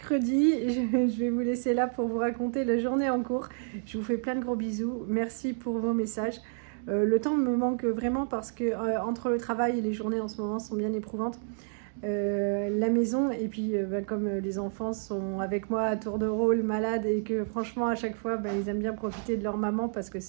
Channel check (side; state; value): left; silent; digital silence